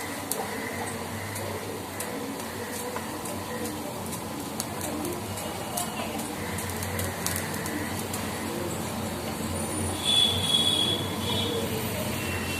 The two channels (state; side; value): identical; both; correlation 1.00